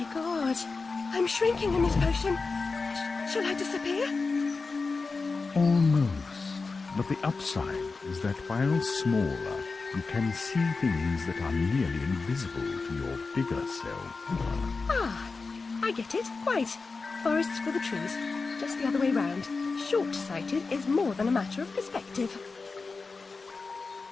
God, I'm shrinking in this potion. Shall I disappear? Almost. But the upside is that while smaller, you can see things that are nearly invisible to your bigger self. Ah, I get it. Right. Forests for the trees. Just the other way round. Short-sighted is more than a matter of perspective.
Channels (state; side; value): quieter; right; 4.2 dB